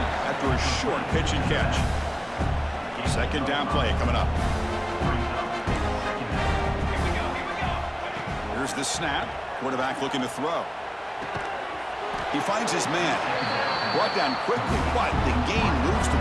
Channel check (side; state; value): both; identical; correlation 1.00